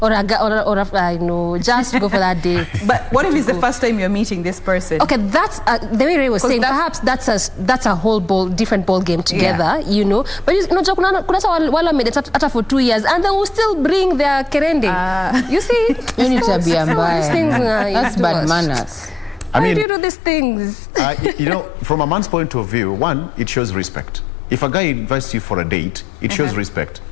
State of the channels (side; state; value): right; drops out; at 19.9 s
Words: Or I know, just go for that date. But what if it's the first time you're meeting this person? Okay, that's the way Ray was saying. Perhaps that's a whole different ball game together, you know. But you know, kuna wala made it after for 2 years, and they will still bring their kerende. You see, you need to be That's bad manners. I mean, why do you do these things? You know, from a man's point of view, one, it shows respect. If a guy invites you for a date, it shows respect.